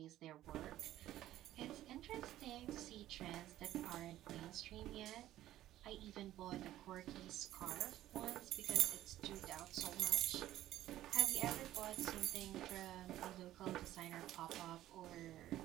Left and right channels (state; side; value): quieter; left; 13.8 dB